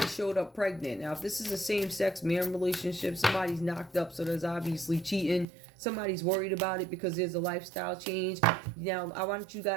showed up pregnant. Now, if this is a same-sex man relationship, somebody's knocked up, so there's obviously cheating. Somebody's worried about it because there's a lifestyle change. Now, I want you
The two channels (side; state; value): left; drops out; at 5.5 s